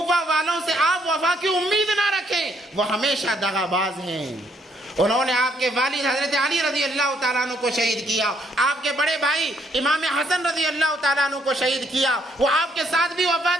والوں سے آپ وفا کی امید نہ رکھیں، وہ ہمیشہ دغا باز ہیں۔ انہوں نے آپ کے والد حضرت علی رضی اللہ تعالیٰ عنہ کو شہید کیا، آپ کے بڑے بھائی امام حسن رضی اللہ تعالیٰ عنہ کو شہید کیا، وہ آپ کے ساتھ بھی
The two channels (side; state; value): both; normal; correlation 0.69